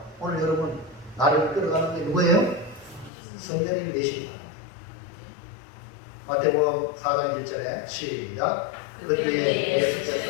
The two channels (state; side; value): drops out; right; at 3.1 s